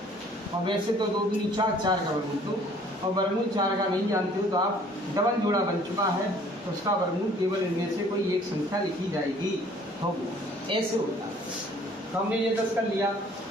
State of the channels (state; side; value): normal; both; correlation 0.56